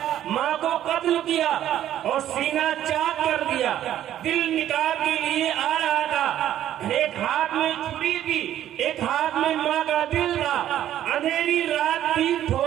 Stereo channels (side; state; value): left; quieter; 11.7 dB